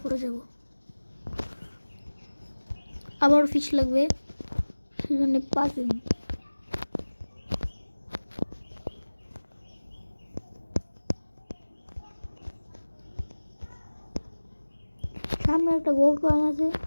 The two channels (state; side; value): inverted; both; correlation -1.00